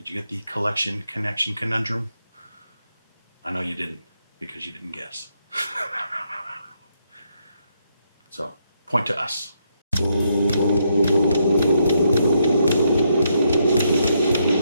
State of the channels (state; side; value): inverted; both; correlation -0.77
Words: you get the collection connection conundrum? I know you didn't, because you didn't guess. So, point to us.